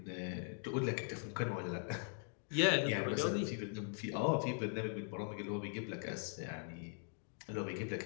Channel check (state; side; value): silent; right; 50 dB below the other